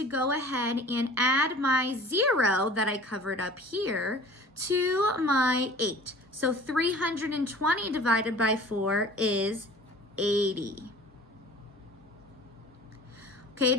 go ahead and add my 0 that I covered up here to my 8. So 320 divided by 4 is 80. Okay, it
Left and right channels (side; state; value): both; normal; correlation 0.45